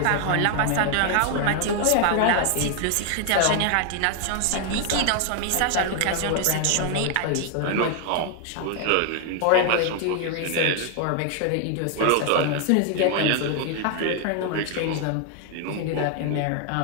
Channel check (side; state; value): both; different; correlation 0.00